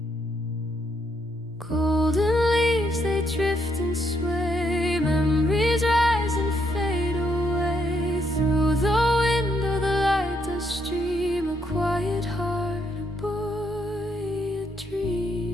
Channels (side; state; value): both; normal; correlation 0.75